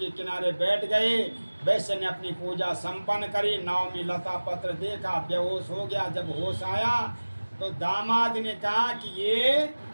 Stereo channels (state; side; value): inverted; both; correlation -1.00